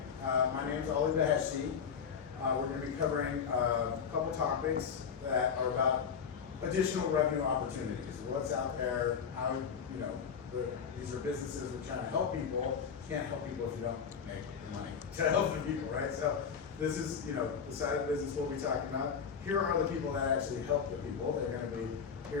My name is Ali Baheshi. We're going to be covering a couple topics that are about additional revenue opportunities. What's out there, how, these are businesses we're trying to help people. You can't help people if you don't make the money to help the people, right? So this is, the side of the business we'll be talking about. Here are the people that actually help the people. They're going to be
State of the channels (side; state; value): right; quieter; 6.7 dB